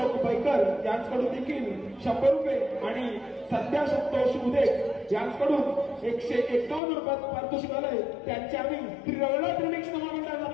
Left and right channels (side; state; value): right; drops out; at 6.8 s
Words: बैकर यांच्याकडून देखील 100 रुपये आणि संध्या संतोष उदे यांच्याकडून 151 रुपयाचं पारितोषिक आलंय. त्यांचे आम्ही श्री रविनाथ रिमिक्स महामंडळ